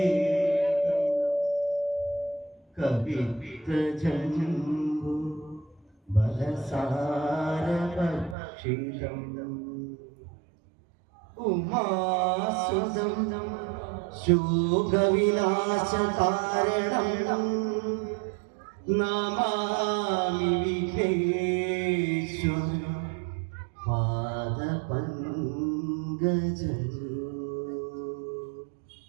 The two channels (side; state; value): left; drops out; at 8.3 s